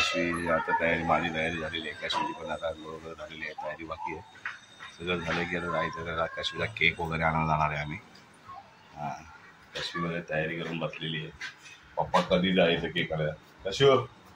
आता माझी तयारी झालेली आहे. कश्मीरची पण आता बरोबर झालेली आहे. तयारी बाकी आहे. सगळं झालं की आता जायचं त्याला कश्मीरचा केक वगैरे आणायला जाणार आहे आम्ही. हां, कश्मीरमध्ये तयारी करून बसलेली आहे. पप्पा कधी जायचं केक आणायला. कशूर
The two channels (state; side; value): identical; both; correlation 1.00